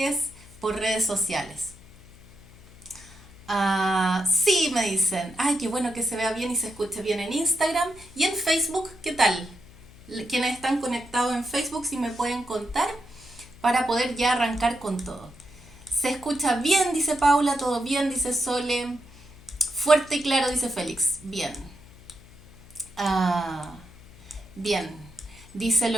por redes sociales. Sí, me dicen. Ay, qué bueno que se vea bien y se escuche bien en Instagram. Y en Facebook, ¿qué tal? Quienes están conectados en Facebook, si me pueden contar para poder ya arrancar con todo. Se escucha bien, dice Paula, todo bien, dice Sole. Fuerte y claro, dice Félix. Bien. Ah, bien. Dice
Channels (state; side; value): noise; left; hum, 22 dB below the sound